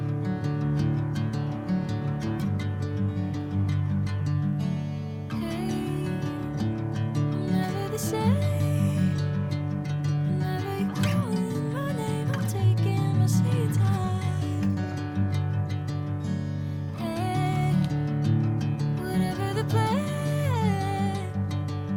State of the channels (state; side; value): identical; both; correlation 1.00